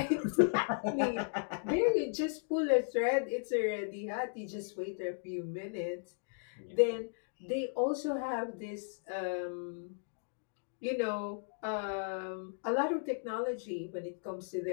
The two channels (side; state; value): right; silent; digital silence